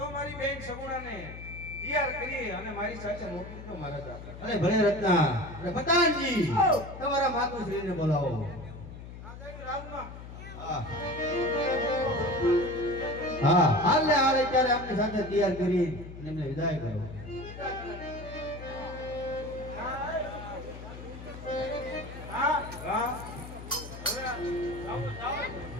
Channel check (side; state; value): left; noise; hum, 13 dB below the sound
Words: મારી બેન સગુણાને તૈયાર કરી અને મારી સાથે મોકલી દો મહારાજા. અરે ભલે રત્ના. અરે પતાનજી તમારા માતુશ્રીને બોલાવો. હા હા હાલ ને હાલ અત્યારે આપની સાથે તૈયાર કરી એમને વિદાય કરો.